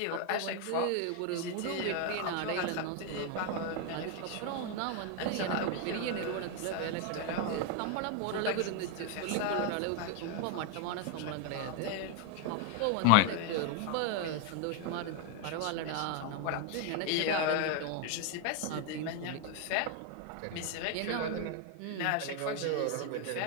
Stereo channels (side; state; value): both; different; correlation 0.00